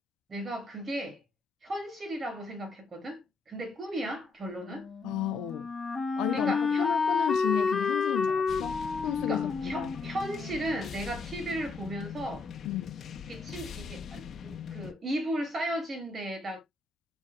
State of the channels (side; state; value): right; quieter; 3.8 dB